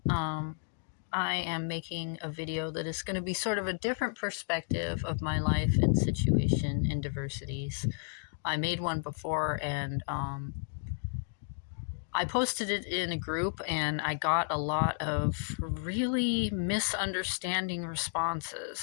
I am making a video that is going to be sort of a different perspective of my life and situation in diversities. I made one before and I posted it in a group and I got a lot of really misunderstanding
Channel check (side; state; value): right; silent; digital silence